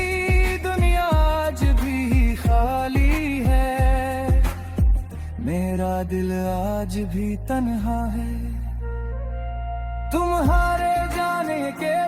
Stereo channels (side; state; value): both; identical; correlation 1.00